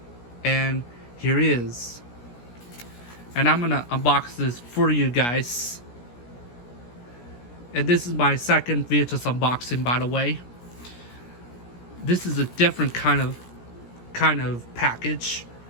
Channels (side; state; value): right; late; 17 ms